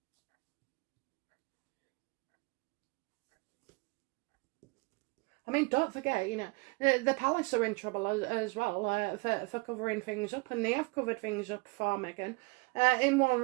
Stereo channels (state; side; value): quieter; left; 28.9 dB